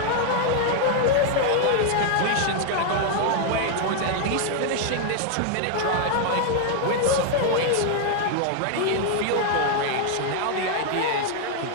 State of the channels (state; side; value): different; both; correlation 0.00